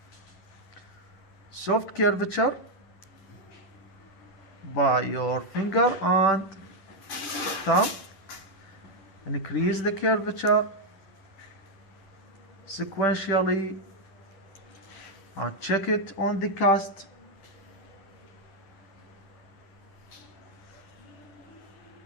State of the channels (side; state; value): right; late; 10 ms